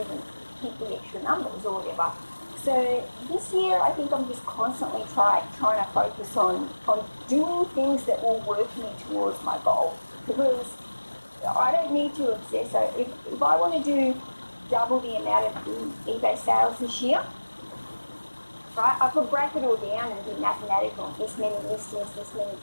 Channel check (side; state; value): both; inverted; correlation -1.00